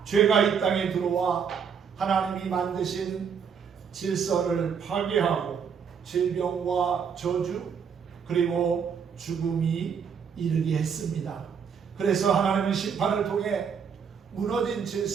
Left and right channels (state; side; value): quieter; left; 6.8 dB